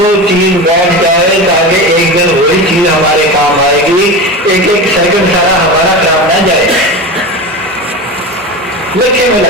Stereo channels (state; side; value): normal; both; correlation 0.26